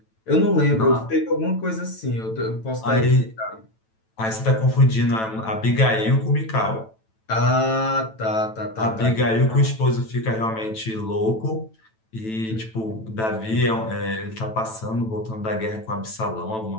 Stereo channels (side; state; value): right; late; 9.1 ms